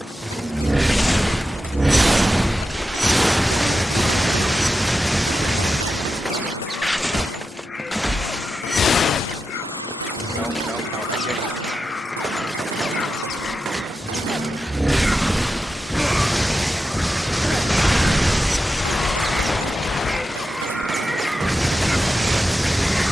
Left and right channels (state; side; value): normal; both; correlation 0.90